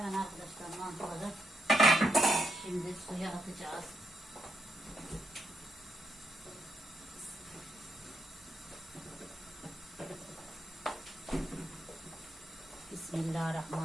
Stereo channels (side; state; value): both; normal; correlation 0.80